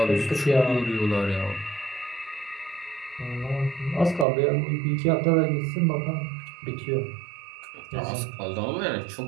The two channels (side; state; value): left; drops out; at 4.2 s